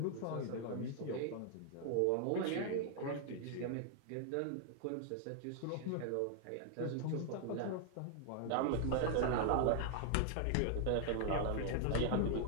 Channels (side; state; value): both; different; correlation 0.00